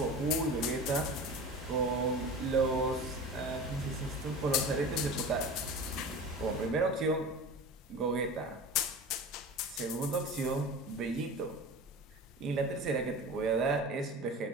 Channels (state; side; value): normal; both; correlation 0.34